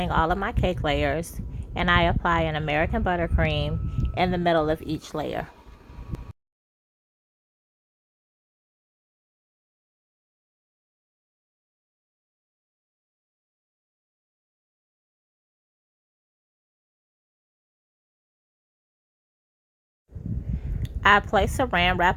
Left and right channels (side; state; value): both; identical; correlation 1.00